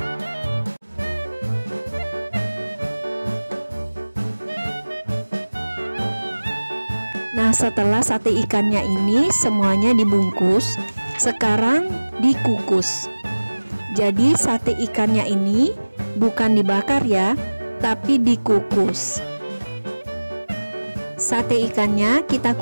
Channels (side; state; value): both; inverted; correlation -1.00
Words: Nah, setelah sate ikannya ini semuanya dibungkus, sekarang dikukus. Jadi sate ikannya ini bukan dibakar ya, tapi dikukus. Sate ikannya kita